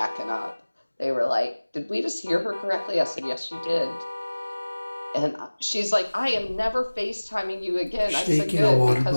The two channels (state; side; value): inverted; both; correlation -1.00